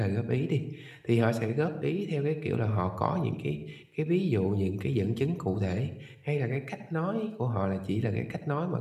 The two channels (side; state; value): both; identical; correlation 1.00